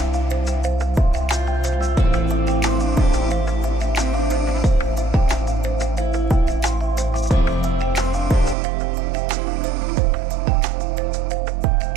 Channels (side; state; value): left; drops out; at 8.6 s